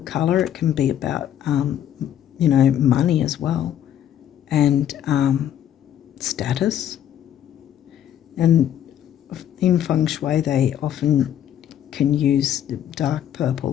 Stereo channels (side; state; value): right; quieter; 10.5 dB